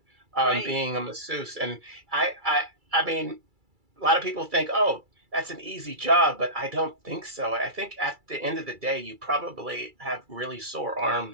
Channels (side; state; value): left; late; 2.3 ms